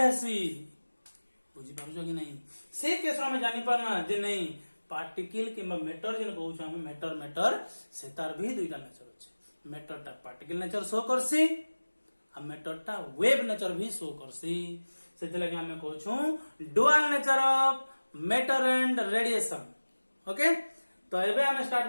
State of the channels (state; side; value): inverted; both; correlation -1.00